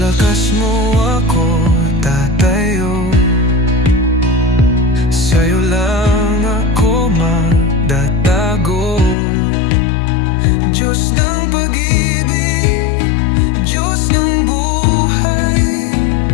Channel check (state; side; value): drops out; right; at 9.2 s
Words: mo ako tatayo, sa'yo lang ako magtatago. Diyos ng pag-ibig, Diyos ng buhay,